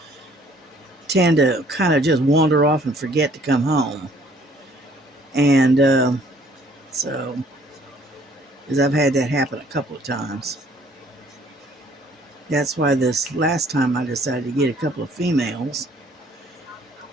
tend to kind of just wander off and forget to come home. And so, because I've had that happen a couple of times. That's why this last time I decided to get a couple of females.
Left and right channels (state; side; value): normal; both; correlation 0.59